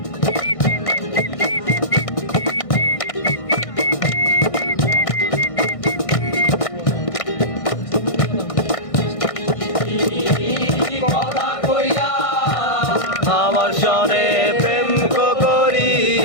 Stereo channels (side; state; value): right; late; 1.6 ms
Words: কথা কইয়া আমার সনে প্রেম